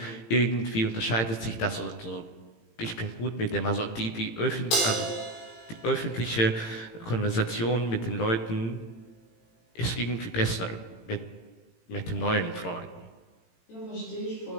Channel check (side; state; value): right; late; 18 ms